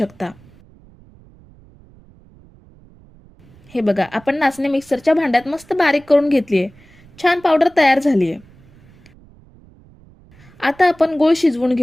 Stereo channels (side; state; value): right; noise; rumble, 26 dB below the sound